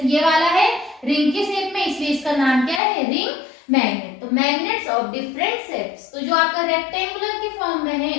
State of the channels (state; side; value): drops out; right; at 2.8 s